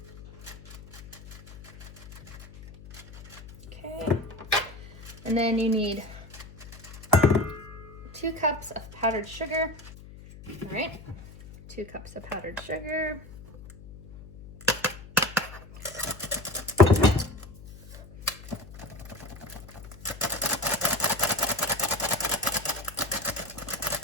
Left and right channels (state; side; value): noise; left; hum, 17 dB below the sound